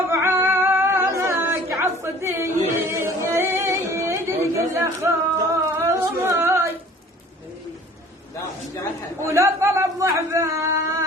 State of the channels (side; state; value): both; normal; correlation 0.50